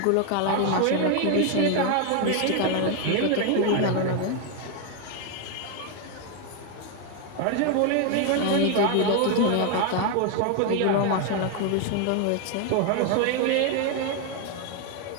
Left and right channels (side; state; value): both; different; correlation 0.01